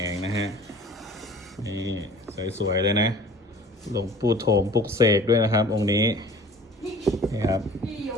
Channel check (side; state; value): both; normal; correlation 0.47